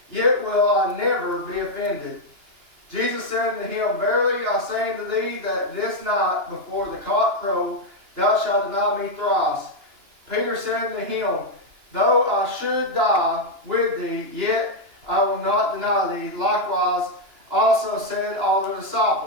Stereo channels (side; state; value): left; late; 2.9 ms